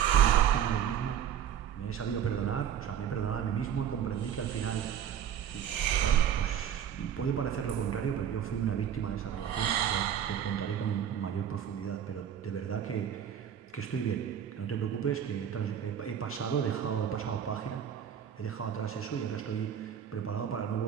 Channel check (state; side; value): quieter; left; 9.2 dB